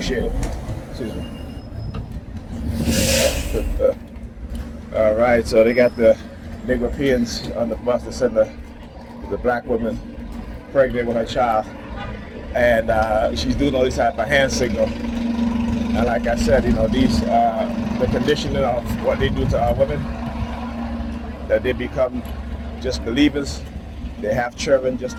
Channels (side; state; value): both; identical; correlation 1.00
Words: Appreciate it. Excuse me. All right, so they got the Negropeans on the bus to send the black woman pregnant with her child, and she's doing all these type of hand signal. And like I said, these the conditioning of what they do to our women, that they become just believers. They have children just